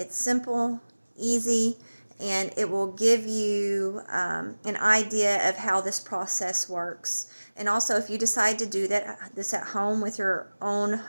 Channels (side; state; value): both; inverted; correlation -1.00